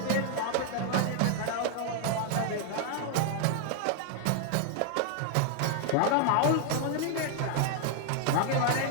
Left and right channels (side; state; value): both; different; correlation 0.00